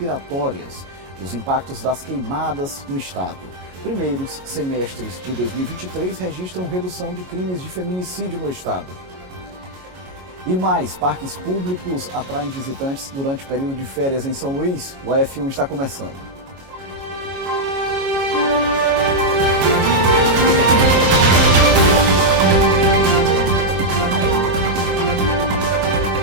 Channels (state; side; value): late; left; 33 ms